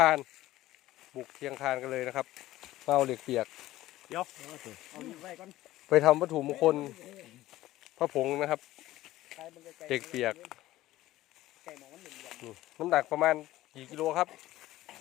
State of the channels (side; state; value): right; quieter; 15.8 dB